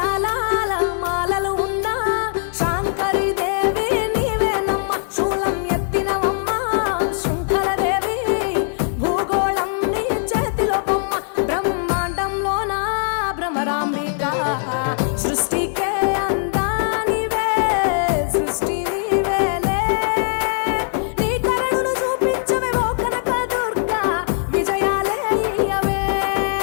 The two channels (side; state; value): right; silent; 62 dB below the other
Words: మాలలు ఉన్నా శాంకరి దేవి నీవేనమ్మ శూలం ఎత్తినవమ్మ శృంఖలదేవి భూగోళం నీ చేతిలో బొమ్మ బ్రహ్మాండంలోన భ్రమరాంబిక సృష్టికే అందానివే సృష్టి నీవేలే నీ కరుణను చూపించవే ఓ కనక దుర్గా విజయాలే ఇయ్యవే